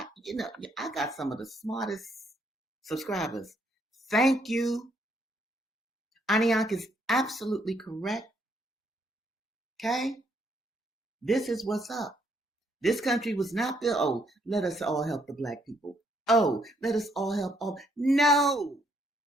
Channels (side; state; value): both; normal; correlation 0.71